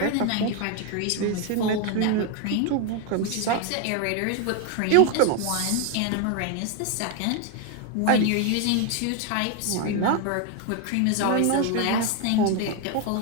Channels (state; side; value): different; both; correlation 0.01